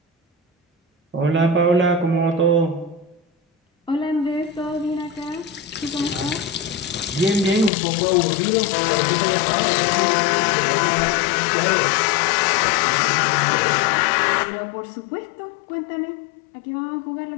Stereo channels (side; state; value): right; drops out; at 7.7 s